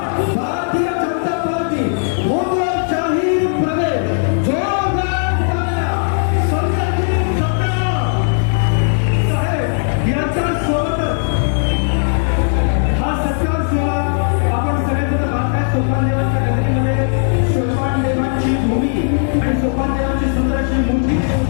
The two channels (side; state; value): right; silent; digital silence